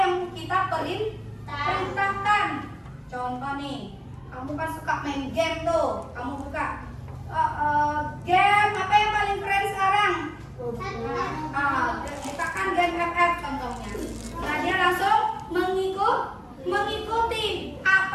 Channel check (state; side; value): identical; both; correlation 1.00